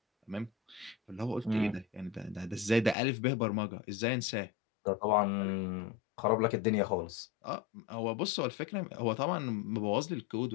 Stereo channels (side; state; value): right; drops out; at 3.0 s